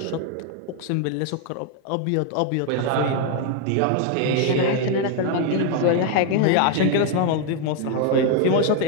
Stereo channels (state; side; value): different; both; correlation 0.01